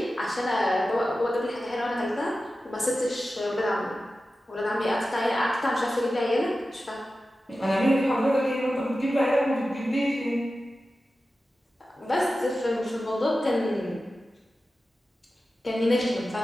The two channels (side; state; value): both; normal; correlation 0.94